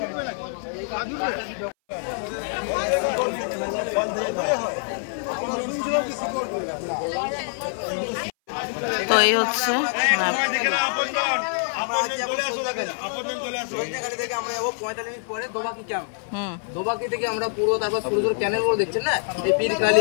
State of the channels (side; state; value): right; silent; 59 dB below the other